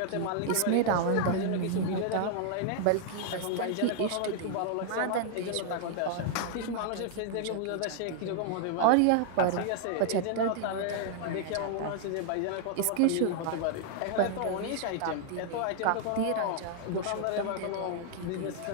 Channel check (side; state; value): both; different; correlation 0.00